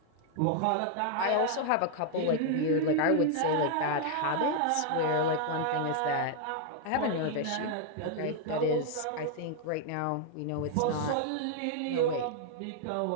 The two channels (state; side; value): different; both; correlation 0.00